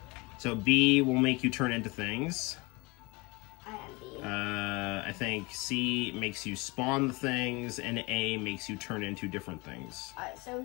So B will make you turn into things. I am B. I think C makes you spawn the things, and A makes you turn into different things. Alright, so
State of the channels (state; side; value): quieter; right; 25.9 dB